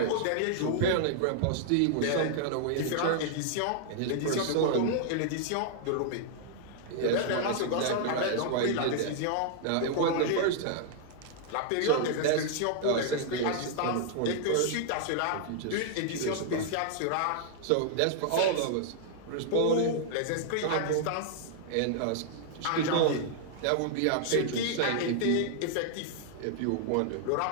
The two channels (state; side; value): different; both; correlation -0.01